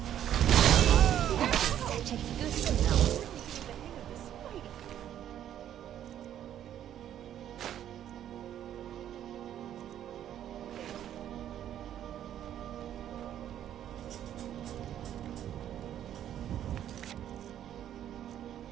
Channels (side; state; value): left; quieter; 10.8 dB